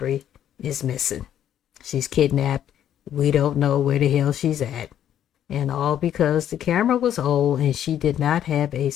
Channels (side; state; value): right; quieter; 10.5 dB